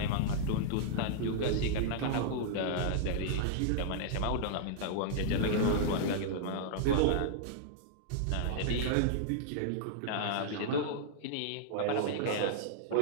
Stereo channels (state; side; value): different; both; correlation -0.02